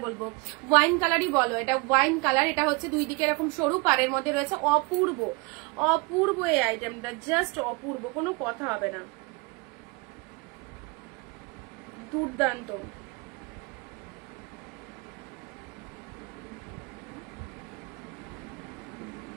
বলবো, ওয়াইন কালারই বলো, এটা ওয়াইন কালার। এটা হচ্ছে দুই দিকে এরকম সরু, পাড়ের মধ্যে রয়েছে, অপূর্ব এই আইটেমটা, জাস্ট অপূর্ব, কোনো কথা হবে না, দুর্দান্ত।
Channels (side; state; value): left; quieter; 27.3 dB